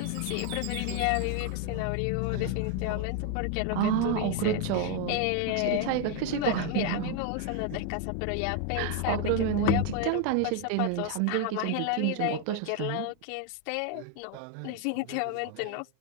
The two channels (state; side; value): different; both; correlation 0.01